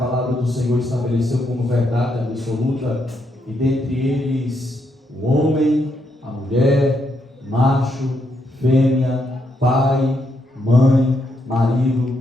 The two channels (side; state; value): both; normal; correlation 0.78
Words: do Senhor estabeleceu como verdade absoluta, e dentre eles o homem, a mulher, macho, fêmea, pai, mãe,